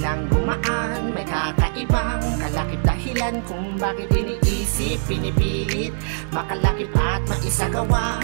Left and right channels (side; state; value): left; silent; 64 dB below the other